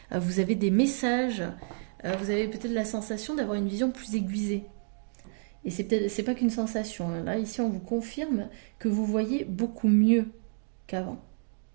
vous avez des messages, vous avez peut-être la sensation d'avoir une vision plus aiguisée. Et c'est pas qu'une sensation, hein. Là, ici, on vous confirme que vous voyez beaucoup mieux qu'avant.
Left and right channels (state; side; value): silent; left; digital silence